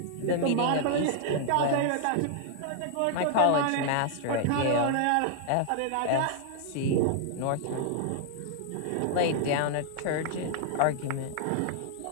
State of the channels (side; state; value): both; different; correlation -0.01